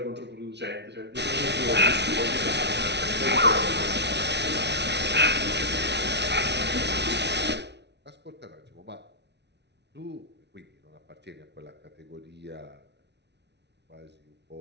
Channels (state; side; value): late; left; 0.50 ms